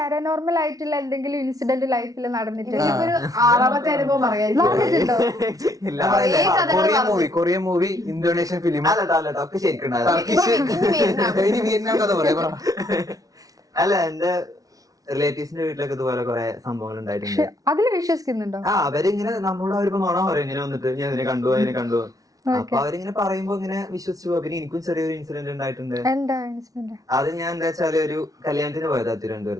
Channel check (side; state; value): left; late; 0.18 ms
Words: ആയിട്ടുള്ള എന്തെങ്കിലും ഇൻസിഡന്റ് ലൈഫിൽ നടന്നിട്ടില്ല? 6ാമത്തെ അനുഭവം പറയാം. കൊറിയൻ മൂവി, ഇന്തോനേഷ്യൻ ഫിലിം, ഇനി വിയറ്റ്നാം കഥ പറയാം. അല്ല എന്റെ റിലേറ്റീവ്സിന്റെ വീട്ടിലൊക്കെ ഇതുപോലെ കുറെ സംഭവങ്ങൾ ഉണ്ടായിട്ടുണ്ട്. അതിൽ വിശ്വസിക്കുന്നുണ്ടോ? അവരിങ്ങനെ നമ്മളോട് അവരിപ്പോ നോണ പറയും, ഇങ്ങനെ വന്നിട്ട് ഞാൻ അതിനെ കണ്ടു. അപ്പൊ അവരിങ്ങനെ പറയുമ്പോ ഇങ്ങനെ വിശ്വസിച്ചു പോകും. പിന്നെ എനിക്കും ചെറിയൊരു ഇൻസിഡന്റ് ഉണ്ടായിട്ടുണ്ട്. അത് ഞാൻ എന്താ വെച്ചാല് ഒരു കല്യാണത്തിന് പോയതാ